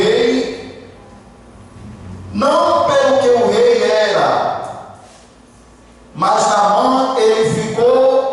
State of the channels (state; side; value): identical; both; correlation 1.00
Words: não pelo que o rei era, mas Naamã, ele